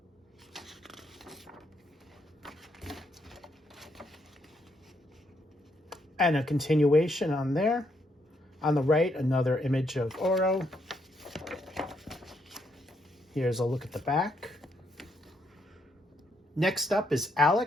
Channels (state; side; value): normal; both; correlation 0.76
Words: And a continuation on there. On the right, another image of Oro. Here's a look at the back. Next up is